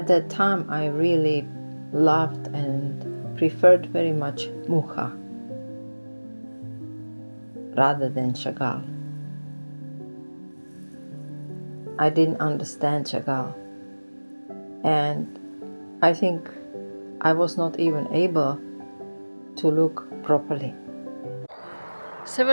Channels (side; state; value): both; inverted; correlation -1.00